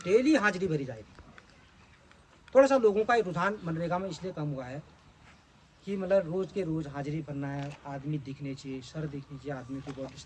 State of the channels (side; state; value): both; identical; correlation 1.00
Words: डेली हाजिरी भरी जाएगी। थोड़ा सा लोगों का रुझान मनरेगा में इसलिए कम हुआ है कि मतलब रोज़ के रोज़ हाजिरी भरना है, आदमी दिखने चाहिए, सर दिखनी चाहिए, आदमी की बॉडी